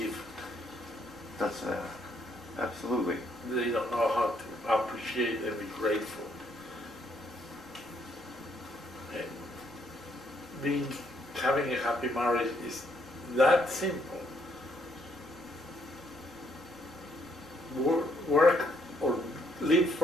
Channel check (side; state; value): both; normal; correlation 0.71